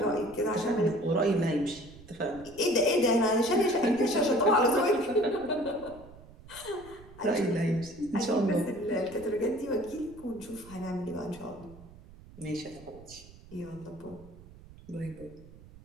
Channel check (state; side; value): noise; right; rumble, 20 dB below the sound